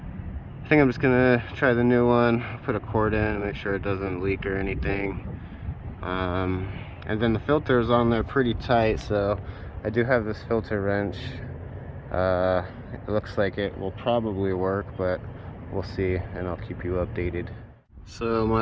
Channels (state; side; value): identical; both; correlation 1.00